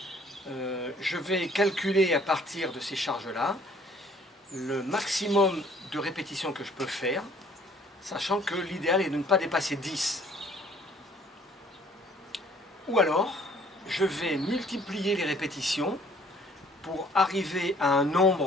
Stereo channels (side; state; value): both; normal; correlation 0.57